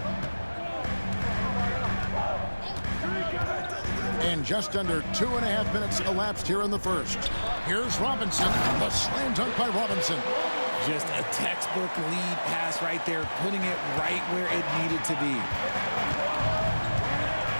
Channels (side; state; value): both; inverted; correlation -1.00